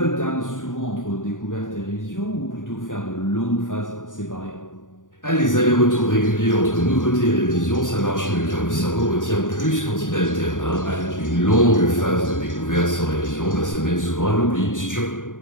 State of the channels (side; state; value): right; late; 0.88 ms